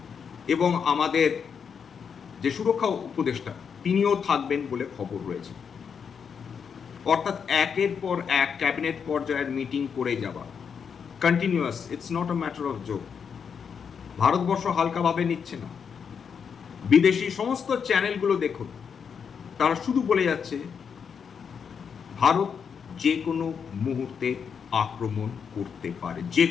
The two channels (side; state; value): right; quieter; 6.7 dB